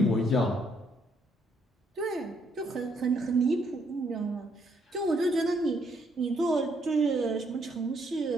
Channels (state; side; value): normal; both; correlation 0.71